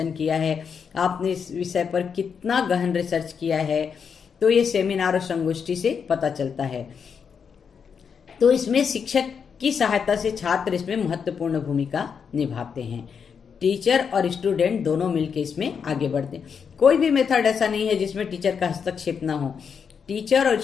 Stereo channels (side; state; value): right; quieter; 6.6 dB